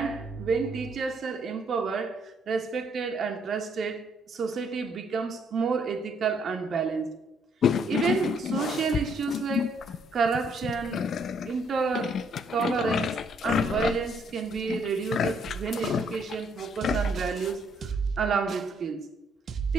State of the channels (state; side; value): normal; both; correlation 0.68